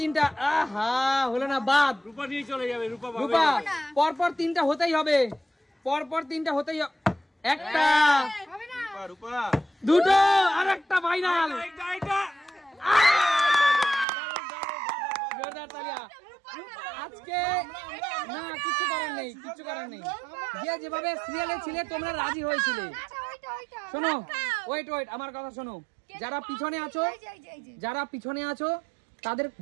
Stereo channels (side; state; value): left; drops out; at 14.1 s